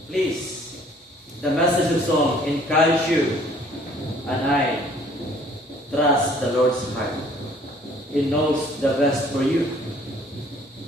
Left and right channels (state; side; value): normal; both; correlation 0.57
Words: please, the message of song encourages you and I trust the Lord's heart. He knows the best for you.